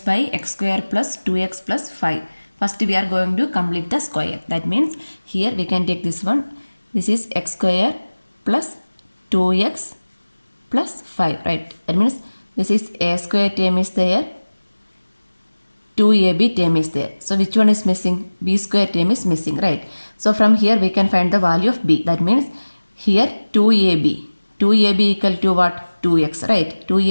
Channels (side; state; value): both; inverted; correlation -1.00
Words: by x square plus 2x plus 5. First we are going to complete the square. That means here we can take this one. This is x square plus 2x plus 5, right? That means this is a square term is there, 2ab term is there. So which one is missing? B square term is missing, right? So from here we can find the value of b. That means here 2ab. 2ab equal to what? 2x, right?